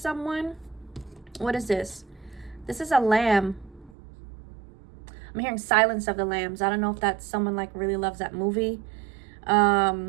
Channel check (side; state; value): left; drops out; at 3.9 s